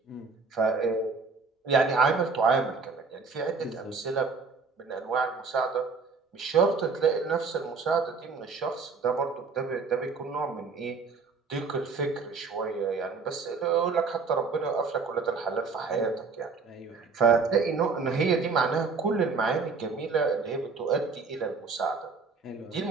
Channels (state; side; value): quieter; left; 4.7 dB